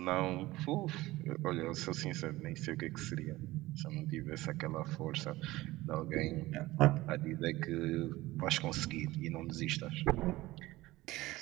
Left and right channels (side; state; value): left; quieter; 18.4 dB